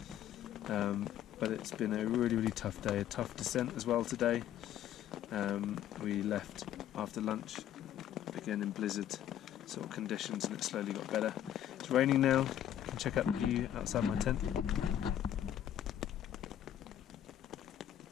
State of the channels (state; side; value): quieter; right; 11.1 dB